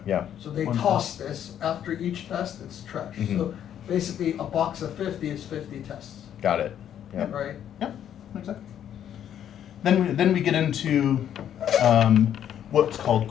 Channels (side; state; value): right; quieter; 10.0 dB